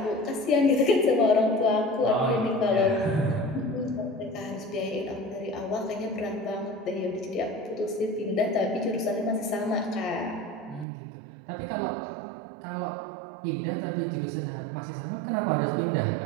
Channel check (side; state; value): left; drops out; at 10.9 s